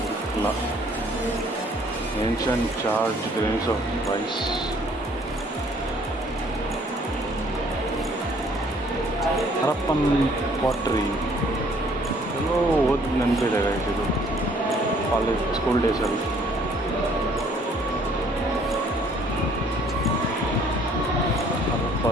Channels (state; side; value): normal; both; correlation 0.60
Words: ಇಲ್ಲ. Ancient charred grains of rice. Harappan pottery ಎಲ್ಲೋ ಓದಿ ನೆನಪಿದೆ ಇದು college school ಡೇಸಲ್ಲಿ.